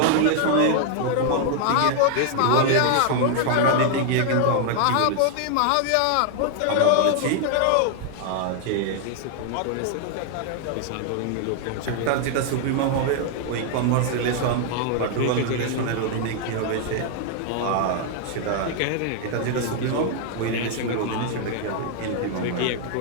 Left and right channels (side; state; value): both; different; correlation 0.00